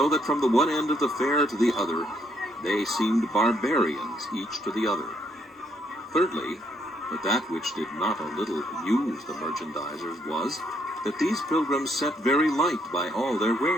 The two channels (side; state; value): both; normal; correlation 0.72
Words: that from the one end of the fair to the other, they seemed barbarians each to the other. Thirdly, But that which did not a little amuse the merchandisers was that these pilgrims set very light by all their